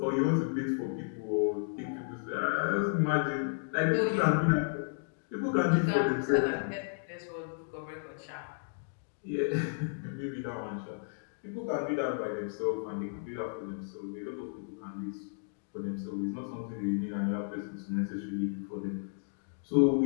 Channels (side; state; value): right; silent; digital silence